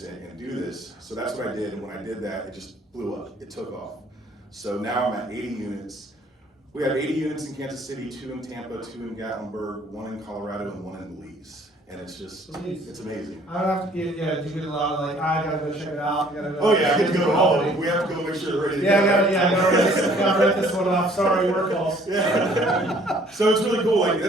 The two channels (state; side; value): normal; both; correlation 0.58